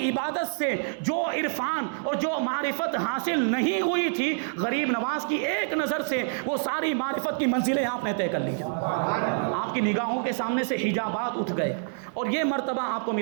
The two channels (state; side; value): silent; left; digital silence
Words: عبادت سے جو عرفان اور جو معرفت حاصل نہیں ہوئی تھی، غریب نواز کی ایک نظر سے وہ ساری معرفت کی منزلیں آپ نے طے کر لی۔ آپ کی نگاہوں کے سامنے سے حجابات اٹھ گئے اور یہ مرتبہ آپ کو